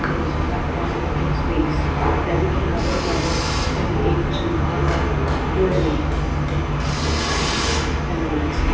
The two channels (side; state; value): both; identical; correlation 1.00